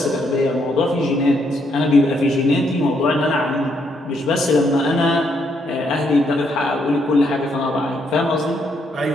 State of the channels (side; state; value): both; normal; correlation 0.74